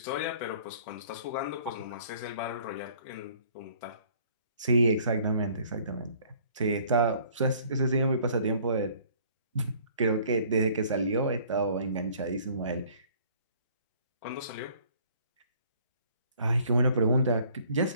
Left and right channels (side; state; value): both; inverted; correlation -0.56